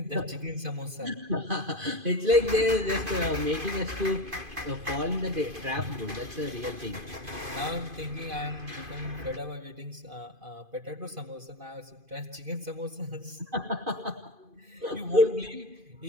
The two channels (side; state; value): left; late; 2.5 ms